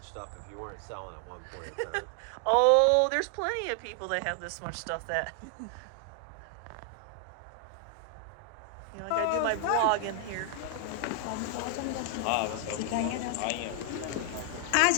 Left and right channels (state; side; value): different; both; correlation 0.00